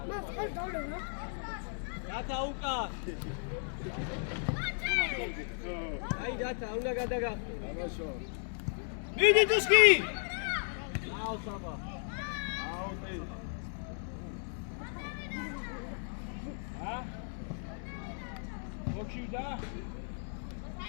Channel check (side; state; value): right; silent; 54 dB below the other